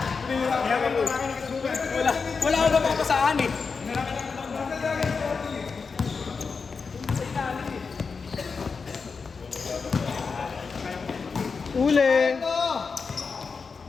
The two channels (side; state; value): right; quieter; 5.1 dB